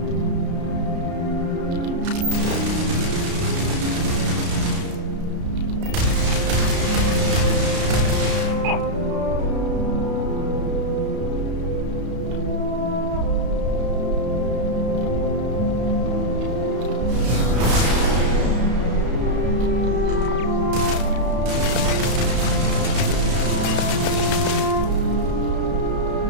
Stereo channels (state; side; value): late; left; 33 ms